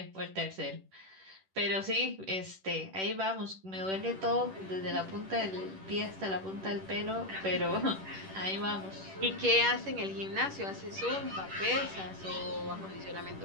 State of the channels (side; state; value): left; late; 10 ms